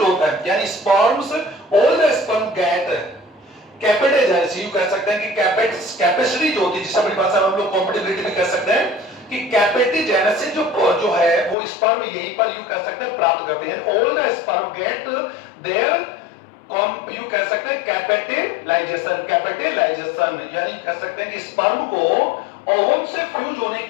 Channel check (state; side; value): drops out; right; at 11.6 s